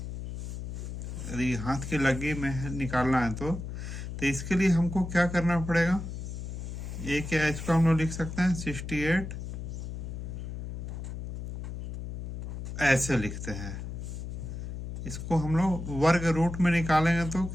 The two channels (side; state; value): left; noise; hum, 6 dB below the sound